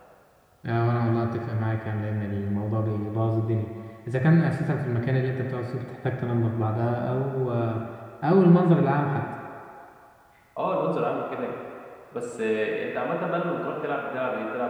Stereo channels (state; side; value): identical; both; correlation 1.00